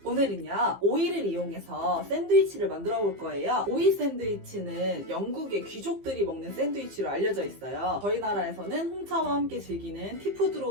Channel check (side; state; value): left; late; 15 ms